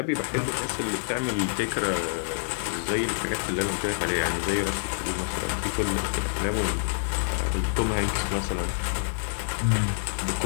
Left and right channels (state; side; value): silent; right; digital silence